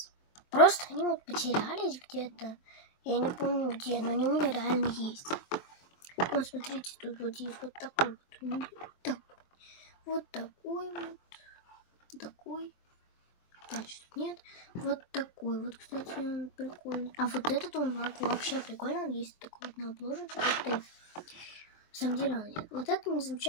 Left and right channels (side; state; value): right; late; 23 ms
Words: Просто они вот потерялись где-то. Я не помню где, но они у меня реально есть. Вот смотрите, тут вот есть вот такой вот. Такой. Дальше тут нет. Вот такой вот, кстати, он прикольный. А вот этот он вообще прикольный. Он есть такой вот на обложечке. На самом деле он нет. Вот это не